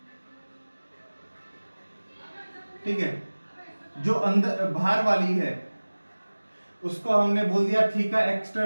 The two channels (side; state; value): both; inverted; correlation -1.00